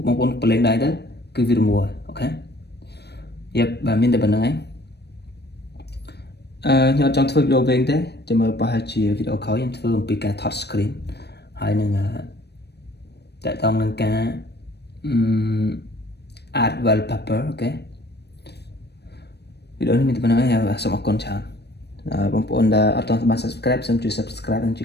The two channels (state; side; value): late; right; 0.48 ms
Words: បងប្អូនប្រឡែងដៃទៅគឺវា remove ហើយអូខេយ៉ាប់បាទមានតែប៉ុណ្្នឹងឯងខ្ញុំចង់ធ្វើវីដេអូវិញទេចាំមើលប្រហែលជាវីដេអូក្រោយខ្ញុំធ្វើអំពីការថត screen ហើយនឹងតកតងនឹងការ add wallpaper អូខេវីដេអូនេះមានតែប៉ុណ្្នឹងឯងសូមអរគុណច្រើនបងប្អូនដែលអត់ទាន់បាន subscribe សូមជួយ subscribe និងជួ